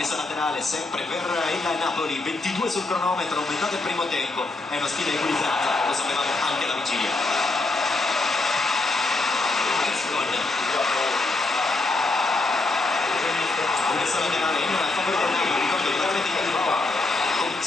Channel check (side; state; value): right; quieter; 3.2 dB